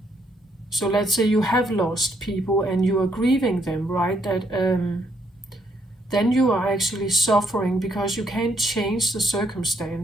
So let's say you have lost people and you are grieving them, right? That then you are actually suffering because you can't change the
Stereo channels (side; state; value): both; normal; correlation 0.72